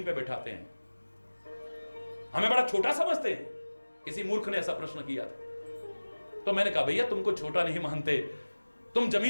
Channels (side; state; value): both; inverted; correlation -1.00